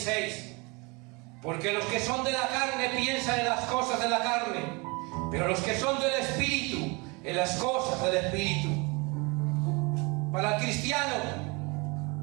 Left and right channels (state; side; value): quieter; left; 28.2 dB